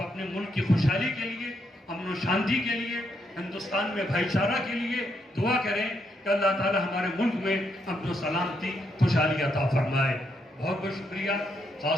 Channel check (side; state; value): both; normal; correlation 0.78